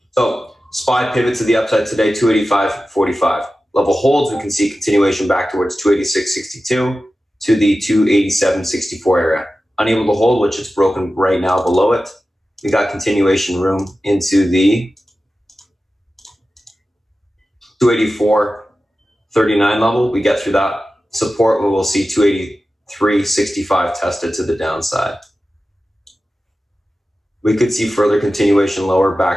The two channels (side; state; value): both; normal; correlation 0.94